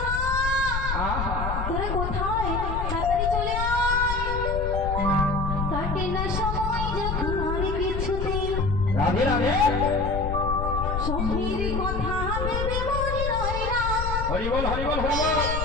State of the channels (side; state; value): left; noise; rumble, 3 dB below the sound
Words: আহা তোরা কোথায়? তাড়াতাড়ি চলে আয়। কাটে না সময় যখন আর কিছুতেই রাধে রাধে। সখীর কথা ভেবে মনে রয় না। হরি বল হরি বল হরি বল।